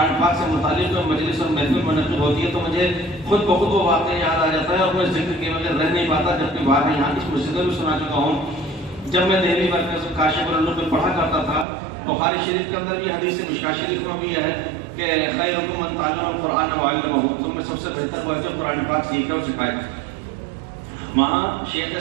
پاک سے متعلق مجلس اور محفل منعقد ہوتی ہے تو مجھے خود بخود وہ واقعہ یاد آ جاتا ہے اور میں ذکر کے بغیر رہ نہیں پاتا، جبکہ بارہا یہاں اس مسجد میں بھی سنا چکا ہوں۔ جب میں دہلی مرکز کاشف العلوم میں پڑھا کرتا تھا، بخاری شریف کے اندر بھی حدیث ہے، مشکاۃ شریف میں بھی ہے کہ خیرکم من تعلم القرآن وعلمہ، تم میں سب سے بہتر وہ ہے جو قرآن پاک سیکھے اور سکھائے۔ وہاں شیخ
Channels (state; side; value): drops out; left; at 11.7 s